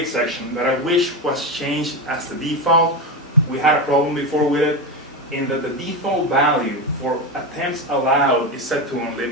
section that I wish was changed as the default. We had a problem before with it, in that the default value for attempts allowed is set to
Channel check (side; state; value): both; normal; correlation 0.16